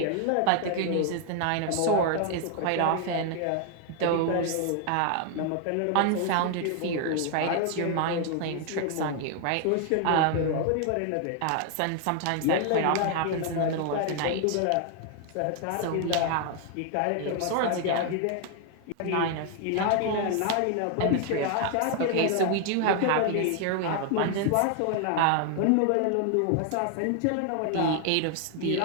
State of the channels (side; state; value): both; different; correlation 0.00